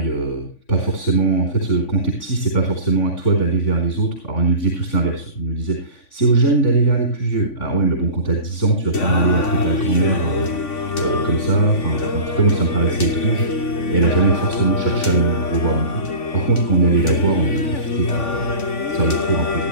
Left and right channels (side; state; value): right; late; 3.5 ms